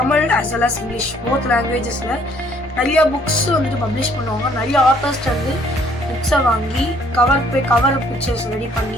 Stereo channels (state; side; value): normal; both; correlation 0.62